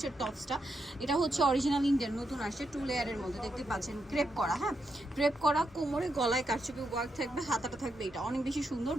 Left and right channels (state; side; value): normal; both; correlation 0.83